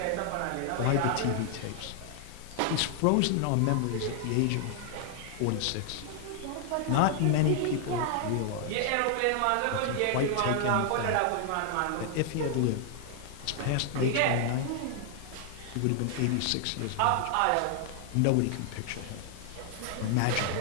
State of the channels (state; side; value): different; both; correlation 0.00